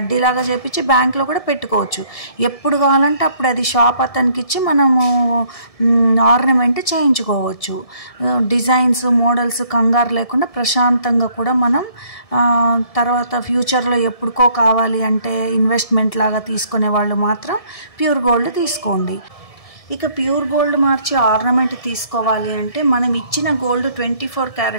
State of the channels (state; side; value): late; right; 1.7 ms